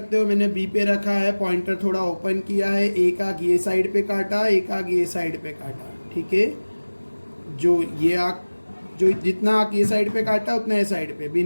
हो। मैंने बी पे रखा है, पॉइंटर थोड़ा ओपन किया है, एक आग ये साइड पे काटा, एक आग ये साइड पे काटा। ठीक है, जो जितना आग ये साइड पे काटा उतना ये साइड पे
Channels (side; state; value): both; inverted; correlation -1.00